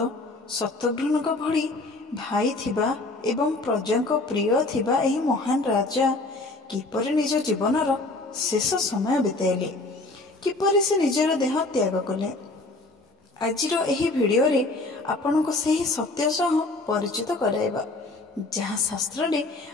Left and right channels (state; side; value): quieter; right; 3.0 dB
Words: शत्रुघ्न भली भाई थिबा एवं प्रजा प्रिय थिबा एही महान राजा किपरि निज जीवनर शेष समय बिताइले, किपरि से निजर देह त्याग कले। आजिर एही भिडियो रे आपन को सही सत्य सह परिचित कराइबा जहाँ शास्त्र रे